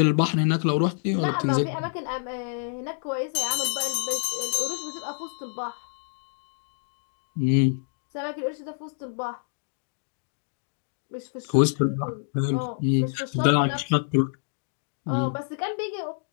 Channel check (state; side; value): silent; right; digital silence